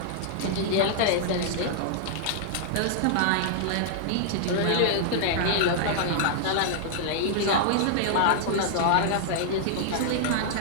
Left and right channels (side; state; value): both; different; correlation -0.01